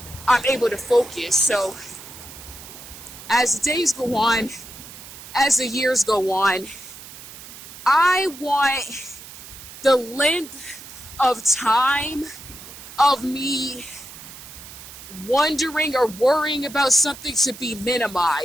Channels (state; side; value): noise; right; hiss, 15 dB below the sound